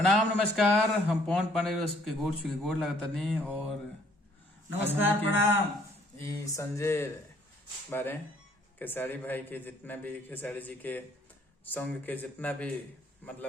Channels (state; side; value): normal; both; correlation 0.62